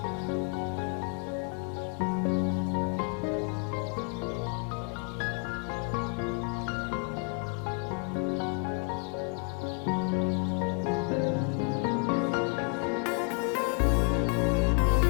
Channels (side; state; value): right; quieter; 36.7 dB